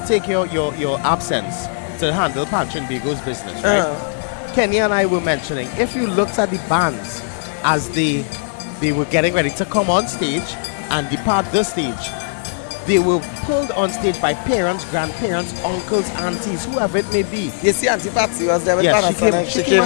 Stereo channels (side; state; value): right; silent; 67 dB below the other